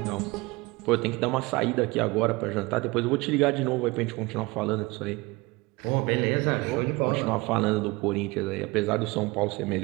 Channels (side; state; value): left; quieter; 23.6 dB